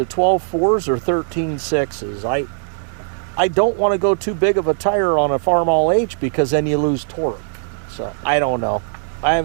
12.4s or 13.6s. I don't want to go too big of a tire on a Farm All H because then you lose torque. So I don't know. I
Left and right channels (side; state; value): left; silent; digital silence